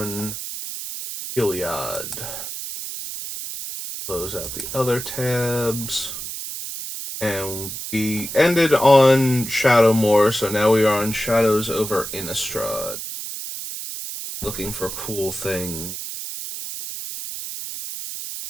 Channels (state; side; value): noise; right; hiss, 7 dB below the sound